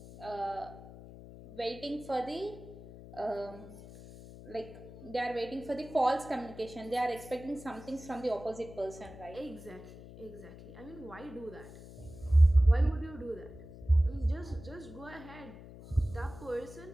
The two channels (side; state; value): left; noise; hum, 16 dB below the sound